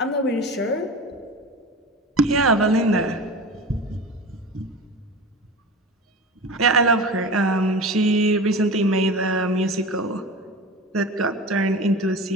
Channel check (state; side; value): normal; both; correlation 0.32